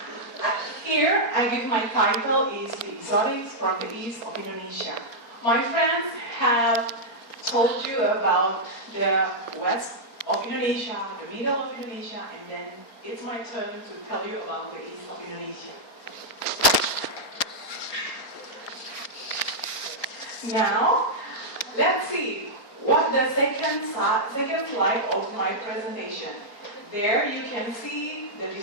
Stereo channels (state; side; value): late; right; 4.3 ms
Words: Here, I give my title is The Exotics from the East of Indonesia. My friends have told you about the west of Indonesia, the middle of Indonesia, and then it's my turn to tell you about the east of Indonesia. Now, let's see what the second slide of my presentation. There you can see the